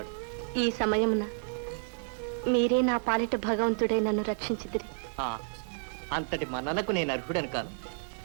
ఈ సమయమున మీరే నా పాలిట భగవంతుడే నన్ను రక్షించిదిరి. అంతటి మన్ననకు నేను అర్హుడను కాను.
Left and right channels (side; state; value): left; silent; digital silence